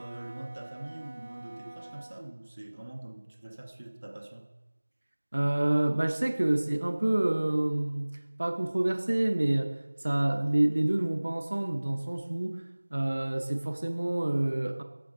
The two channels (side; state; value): both; inverted; correlation -1.00